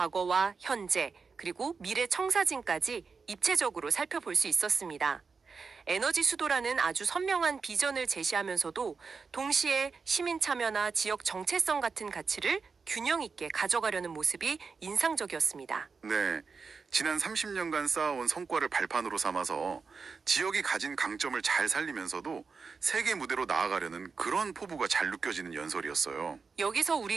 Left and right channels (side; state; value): left; quieter; 5.0 dB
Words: 현재 그리고 미래 청사진까지 입체적으로 살펴볼 수 있었습니다. 에너지 수도라는 아주 선명한 비전을 제시하면서도 동시에 시민 참여나 지역 정체성 같은 가치를 균형 있게 가져가려는 모습이 인상적이었습니다. 네, 지난 30년간 쌓아온 성과를 발판으로 삼아서 지역이 가진 강점을 잘 살리면서도 세계 무대로 나아가려는 그런 포부가 잘 느껴지는 연설이었어요. 여기서